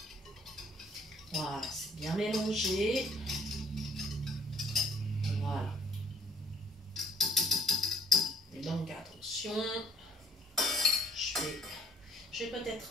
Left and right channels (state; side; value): normal; both; correlation 0.59